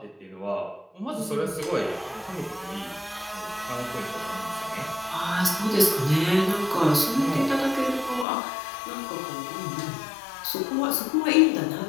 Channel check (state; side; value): drops out; right; at 8.2 s